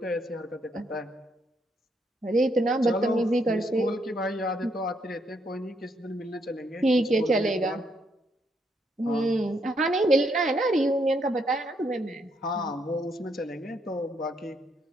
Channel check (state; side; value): normal; both; correlation 0.75